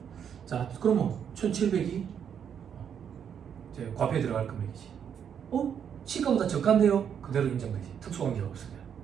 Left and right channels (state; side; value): quieter; left; 8.1 dB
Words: 자, 그러면 1,700이 이제 과표에 들어갈 금액이지. 시가보다 저가인데요? 그대로 인정되지. 특수관계가 없으면.